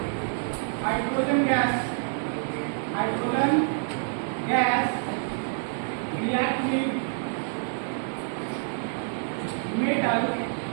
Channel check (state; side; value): silent; left; digital silence